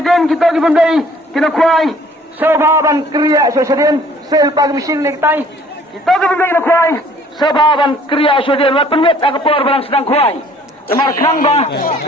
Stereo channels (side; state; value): both; normal; correlation 0.56